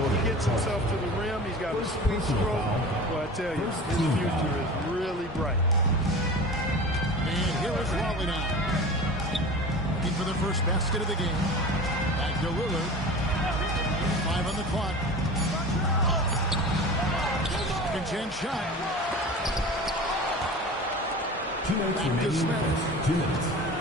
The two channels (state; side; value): normal; both; correlation 0.35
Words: gets himself to the rim. He's got a sweet stroke. Well, I tell you, his future is really bright. And here is Raleigh now. Looking for the first basket of the game. Back to Lillard. 5 on the clock. Second chance shot. 2 minutes Back to remaining. Smith. 2 minutes.